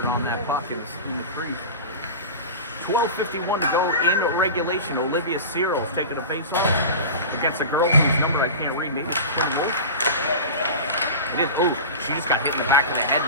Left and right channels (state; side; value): inverted; both; correlation -0.30